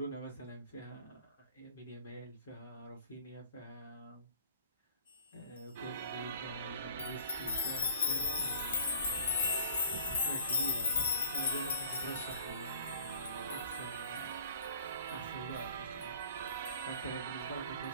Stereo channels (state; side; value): inverted; both; correlation -0.50